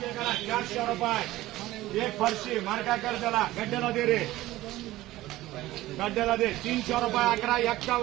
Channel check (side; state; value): left; quieter; 16.7 dB